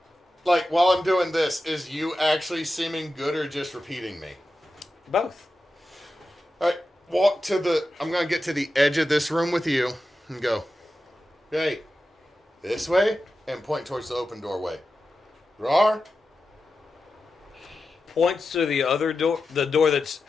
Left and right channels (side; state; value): both; normal; correlation 0.92